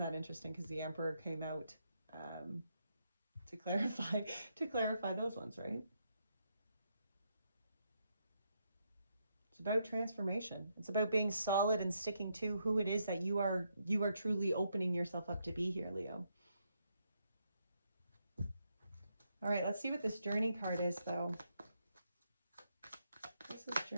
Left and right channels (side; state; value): both; inverted; correlation -0.78